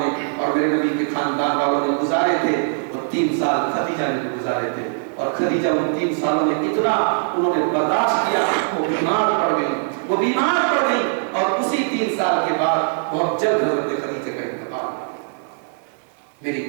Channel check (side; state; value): left; silent; digital silence